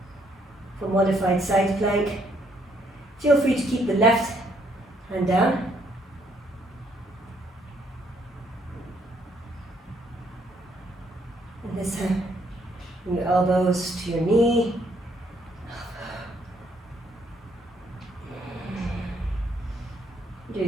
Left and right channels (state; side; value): normal; both; correlation 0.69